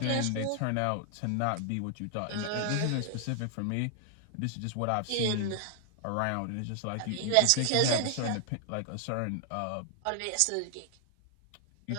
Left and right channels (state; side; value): different; both; correlation 0.00